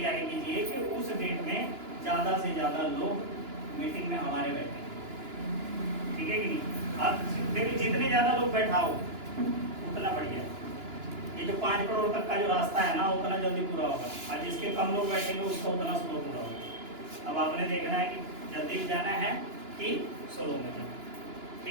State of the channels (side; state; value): left; late; 2.9 ms